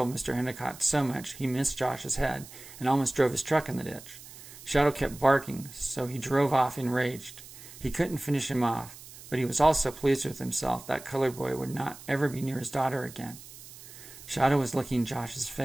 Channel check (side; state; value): right; noise; hiss, 17 dB below the sound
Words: Mr. Endicott so much he missed Josh's head and almost drove his truck in the ditch. Shadow kept barking, so he drove off enraged. He couldn't finish him off, but he was also pleased with himself that colored boy would not ever be near his daughter again. Shadow was licking Josh's